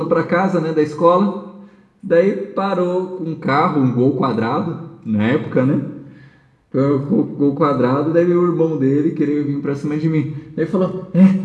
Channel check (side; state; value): both; identical; correlation 1.00